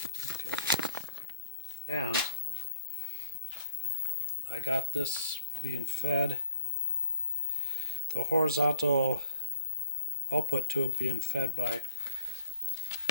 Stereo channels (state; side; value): inverted; both; correlation -0.56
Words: Okay. And I got this being fed, the horizontal output tube being fed by